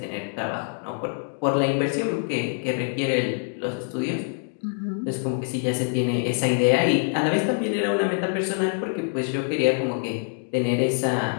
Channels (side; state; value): right; silent; 62 dB below the other